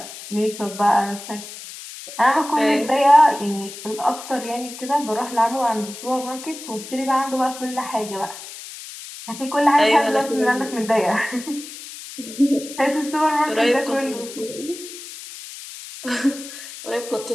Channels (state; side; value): noise; left; hiss, 13 dB below the sound